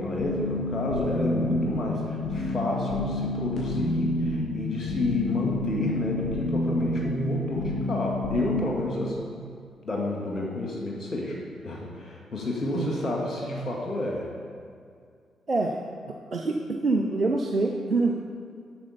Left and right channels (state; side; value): normal; both; correlation 0.60